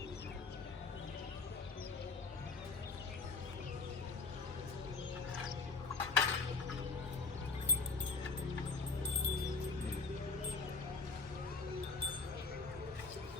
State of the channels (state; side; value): quieter; right; 4.1 dB